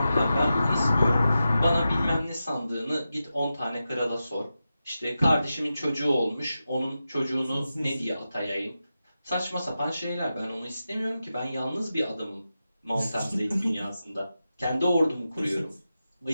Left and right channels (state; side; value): inverted; both; correlation -0.91